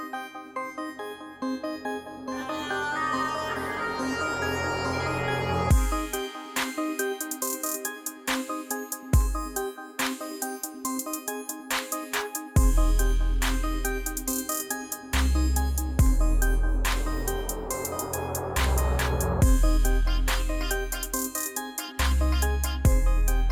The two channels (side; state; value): both; identical; correlation 1.00